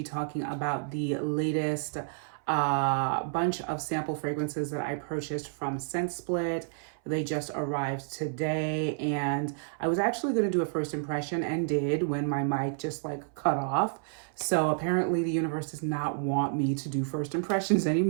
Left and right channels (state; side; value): silent; left; 58 dB below the other